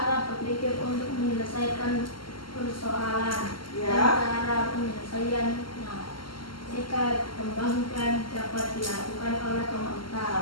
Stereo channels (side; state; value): right; late; 0.73 ms